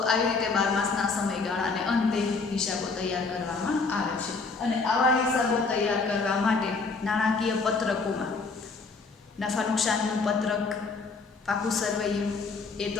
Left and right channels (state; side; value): quieter; right; 4.3 dB